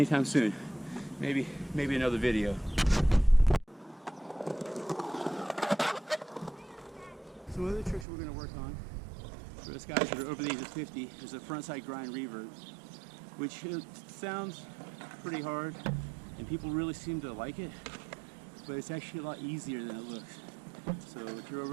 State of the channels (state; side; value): drops out; left; at 8.1 s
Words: soon. Maybe another video. Some other tricks we're going to work on for us guys that are over the age of 50 is a frontside grind revert, which sounds pretty hard and people really seem to like it, but it's actually a lot easier than it looks. So if you're